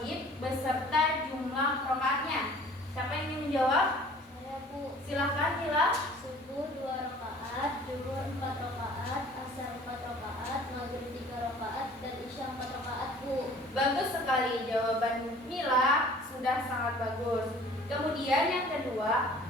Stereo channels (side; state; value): both; normal; correlation 0.50